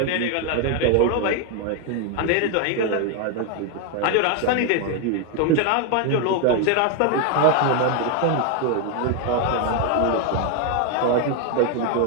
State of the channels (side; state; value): both; different; correlation 0.01